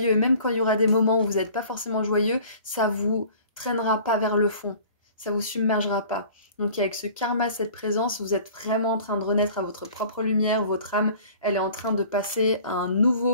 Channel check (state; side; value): inverted; both; correlation -0.47